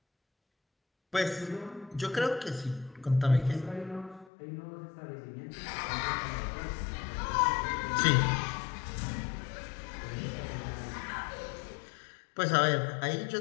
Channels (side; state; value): right; drops out; at 4.3 s